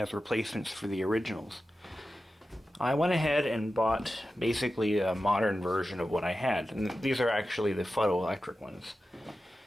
replacements for the originals. I went ahead and bought basically a modern version of what I had, and these are actually the photoelectric ones.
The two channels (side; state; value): both; normal; correlation 0.93